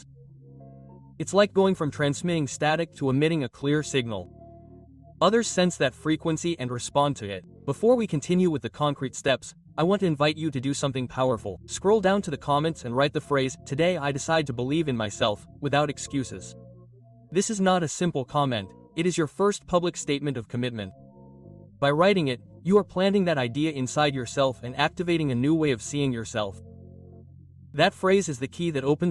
It's like going from transmitting static to emitting a clear signal. Others sense that frequency and respond to it. Before we continue with the concrete steps, I want to invite you to do something powerful. Scroll down to the comments and write the phrase, "Today I decide to believe in myself," without excuses. This is not a simple comment, it is your first public statement of commitment. By writing it, you are planting that idea inside yourself and activating a new way of seeing yourself. That phrase is the key that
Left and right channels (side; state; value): both; identical; correlation 1.00